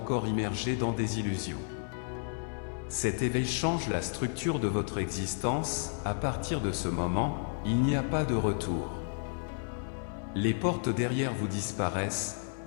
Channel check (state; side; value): silent; right; digital silence